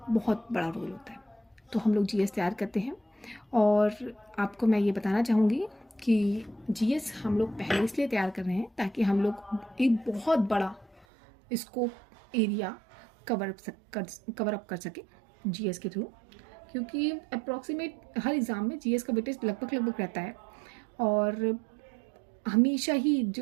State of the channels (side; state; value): left; drops out; at 11.1 s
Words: बहुत बड़ा रोल होता है। तो हम लोग जीएस तैयार करते हैं और आपको मैं ये बताना चाहूँगी कि जीएस हम लोग पहले इसलिए तैयार कर रहे हैं ताकि हम लोग एक बहुत बड़ा स्कोप एरिया कवर अप कर सके जीएस के थ्रू, क्योंकि अप्रॉक्सीमेट हर एग्ज़ाम में जीएस का वेटेज लगभग रहता है और हमेशा ही